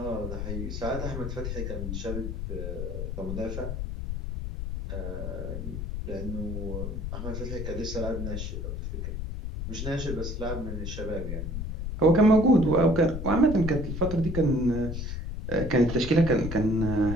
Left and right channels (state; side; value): noise; left; rumble, 4 dB below the sound